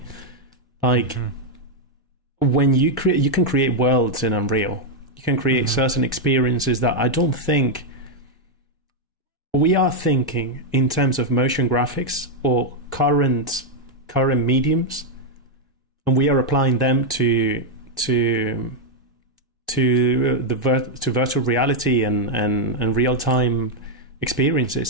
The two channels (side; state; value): both; normal; correlation -0.01